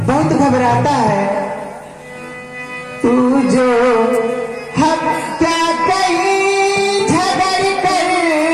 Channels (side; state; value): both; identical; correlation 1.00